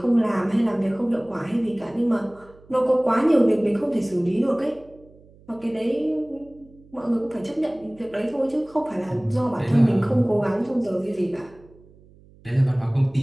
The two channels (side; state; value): right; noise; hum, 26 dB below the sound